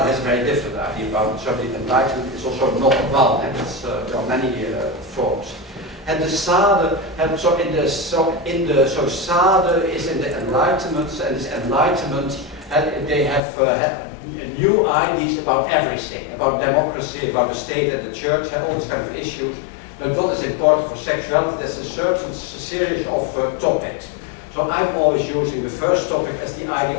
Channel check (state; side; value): drops out; right; at 13.4 s